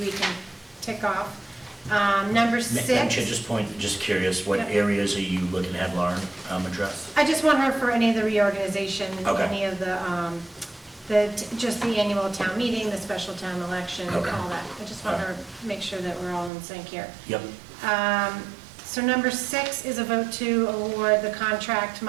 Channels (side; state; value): left; drops out; at 16.5 s